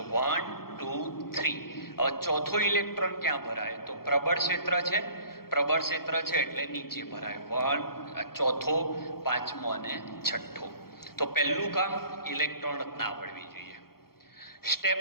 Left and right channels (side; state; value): right; late; 0.94 ms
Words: 1 2 3. હવે ચોથો ઇલેક્ટ્રોન ક્યાં ભરાય? તો પ્રબળ ક્ષેત્ર છે. પ્રબળ ક્ષેત્ર છે એટલે નીચે ભરાય. 1 ચોથો, પાંચમો અને છઠ્ઠો. તો પહેલું કામ ઇલેક્ટ્રોન રચના આવડવી જોઈએ. સ્ટેપ